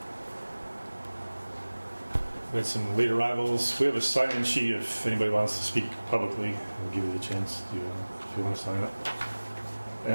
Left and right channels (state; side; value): inverted; both; correlation -1.00